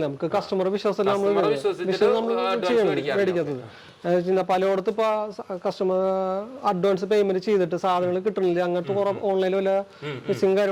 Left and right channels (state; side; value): identical; both; correlation 1.00